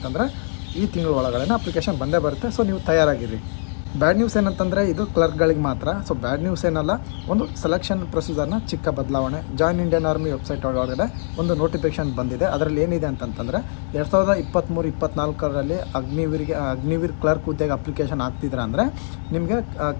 ಈ ತಿಂಗಳ ಒಳಗಡೆ ಅಪ್ಲಿಕೇಶನ್ ಬಂದೇ ಬರುತ್ತೆ. ಸೊ ನೀವು ತಯಾರಾಗಿರಿ. ಬ್ಯಾಡ್ ನ್ಯೂಸ್ ಏನಂತಂದರೆ ಇದು ಕ್ಲರ್ಕ್ಗಳಿಗೆ ಮಾತ್ರ. ಸೊ ಬ್ಯಾಡ್ ನ್ಯೂಸ್ ಏನಲ್ಲ, ಒಂದು ಸೆಲೆಕ್ಷನ್ ಪ್ರೊಸೀಜರ್ನ ಚಿಕ್ಕ ಬದಲಾವಣೆ. ಜಾಯಿನ್ ಇಂಡಿಯನ್ ಆರ್ಮಿ ವೆಬ್ಸೈಟ್ ಒಳಗಡೆ ಒಂದು ನೋಟಿಫಿಕೇಶನ್ ಬಂದಿದೆ. ಅದರಲ್ಲಿ ಏನಿದೆ ಅಂತಂತಂದರೆ 2023-24ರಲ್ಲಿ ಅಗ್ನಿವೀರ್ ಕ್ಲರ್ಕ್ ಹುದ್ದೆಗೆ ಅಪ್ಲಿಕೇಶನ್ ಹಾಕ್ತಿದ್ರೆ ಅಂದರೆ ನಿಮಗೆ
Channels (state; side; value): silent; right; digital silence